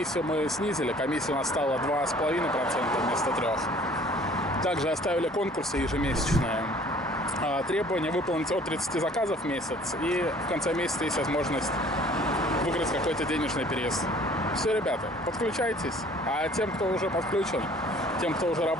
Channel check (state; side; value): normal; both; correlation 0.53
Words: мы снизили. Комиссия у нас стала 2,5% вместо 3%. Также оставили конкурсы ежемесячные. Требование выполнить от 30 заказов в месяц. И в конце месяца есть возможность выиграть какой-то денежный приз. Все, ребята, подключайтесь. А тем, кто уже подключен, тем, кто уже